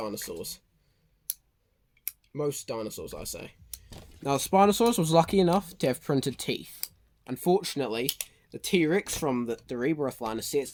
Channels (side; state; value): both; identical; correlation 1.00